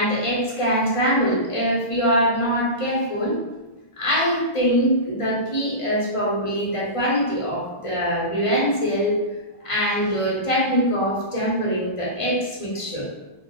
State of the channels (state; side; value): late; right; 1.5 ms